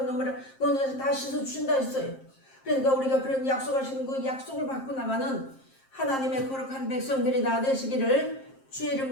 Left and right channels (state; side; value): late; right; 7.5 ms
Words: 눈물을 너네에서 다 씻어주신다 했어요. 그러니까 우리가 그런 약속하신 그 약속을 받고 나가는 하나님의 거룩한 백성들이 다 되시기를 주의